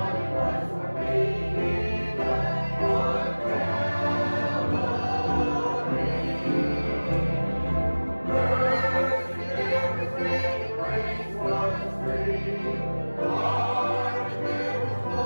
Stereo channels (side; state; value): both; inverted; correlation -1.00